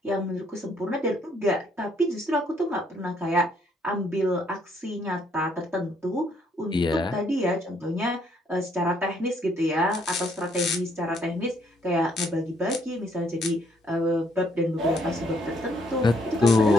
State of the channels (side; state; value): both; normal; correlation 0.68